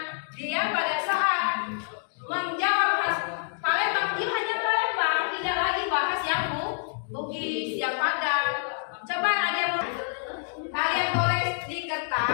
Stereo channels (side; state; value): right; silent; digital silence